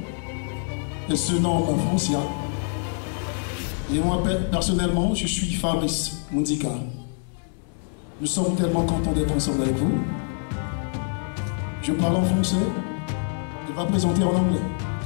Elle se nomme Francia. Et moi, personnellement, je suis Fabrice Mundika. Nous sommes tellement contents d'être ensemble avec vous. Je parle en français. Elle va présenter en anglais.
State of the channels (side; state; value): right; silent; 56 dB below the other